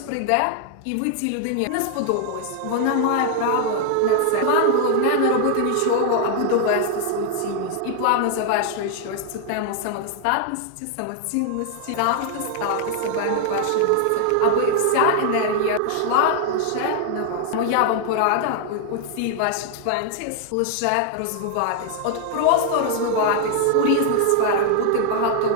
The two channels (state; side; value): different; both; correlation 0.00